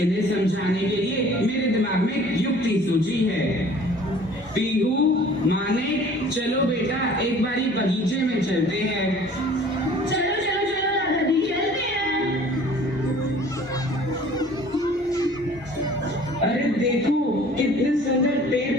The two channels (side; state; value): both; normal; correlation 0.50